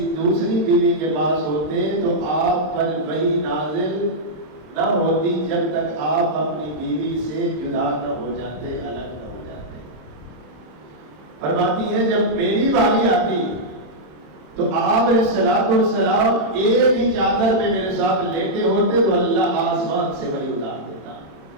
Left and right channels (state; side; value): late; left; 26 ms